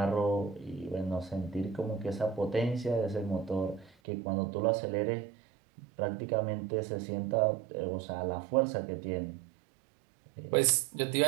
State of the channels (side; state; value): left; drops out; at 3.9 s